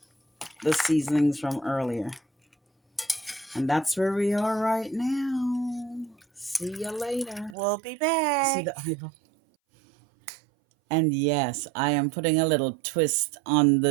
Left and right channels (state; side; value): drops out; left; at 7.6 s